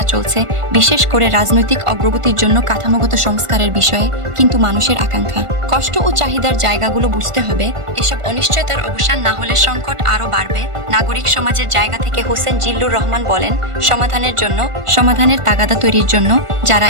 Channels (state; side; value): late; left; 1.5 ms